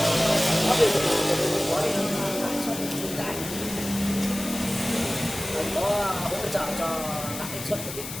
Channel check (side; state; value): left; noise; hiss, 9 dB below the sound